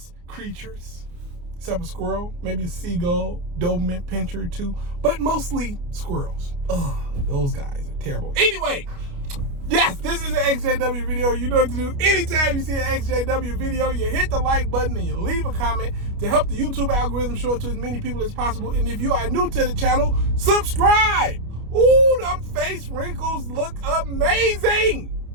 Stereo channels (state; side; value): late; left; 29 ms